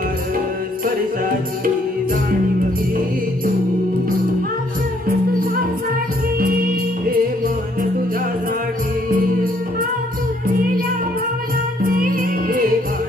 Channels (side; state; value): both; normal; correlation 0.67